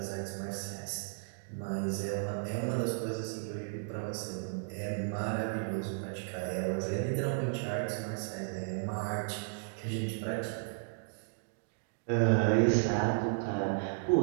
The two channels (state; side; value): silent; left; digital silence